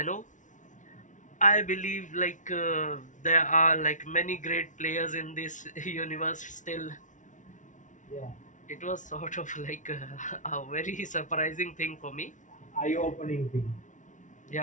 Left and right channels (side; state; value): right; late; 0.37 ms